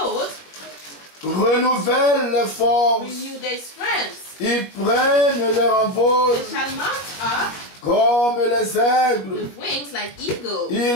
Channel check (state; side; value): late; right; 21 ms